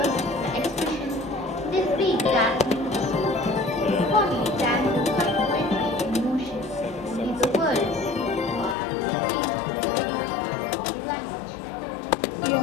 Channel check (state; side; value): drops out; right; at 8.8 s